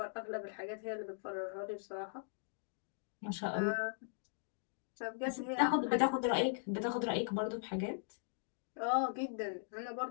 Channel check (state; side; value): silent; right; digital silence